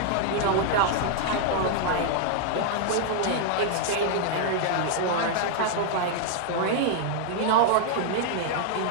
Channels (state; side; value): different; both; correlation 0.00